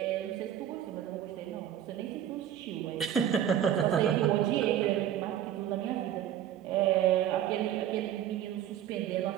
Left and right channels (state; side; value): quieter; left; 10.6 dB